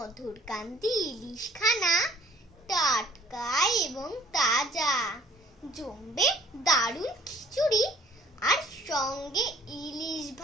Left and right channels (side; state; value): both; normal; correlation 0.56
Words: কান্তি ইলিশখানা টাটকা এবং তাজা, জমবে দারুণ খিচুড়ি আর সঙ্গে ইলিশ